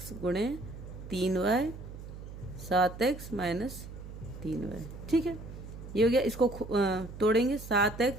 गुणे 3y, 7x माइनस 3y। ठीक है, ये हो गया। इसको तोड़ेंगे,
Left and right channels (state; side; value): noise; right; hum, 12 dB below the sound